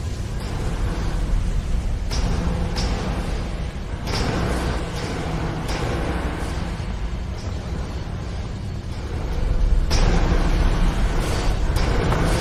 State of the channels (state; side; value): identical; both; correlation 1.00